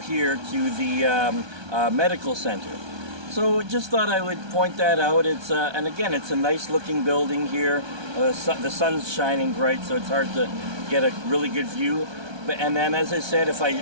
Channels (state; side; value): late; left; 1.2 ms